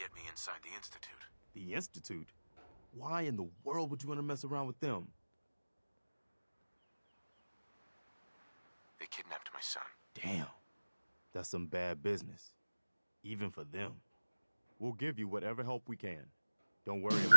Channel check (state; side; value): inverted; both; correlation -1.00